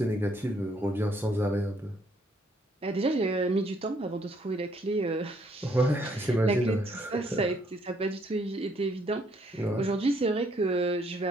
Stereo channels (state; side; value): normal; both; correlation 0.68